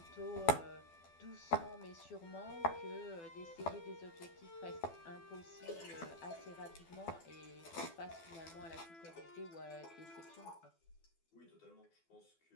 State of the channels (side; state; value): right; late; 12 ms